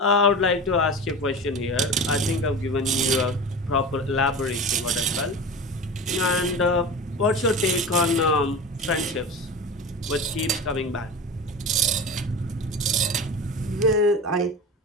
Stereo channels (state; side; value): normal; both; correlation 0.30